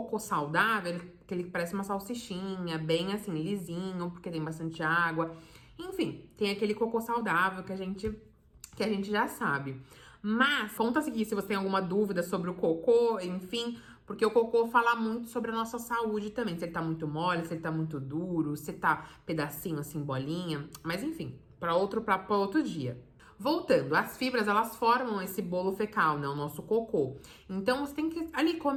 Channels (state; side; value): identical; both; correlation 1.00